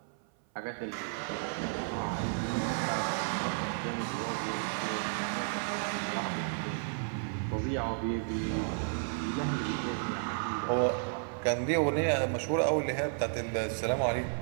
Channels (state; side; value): silent; left; 56 dB below the other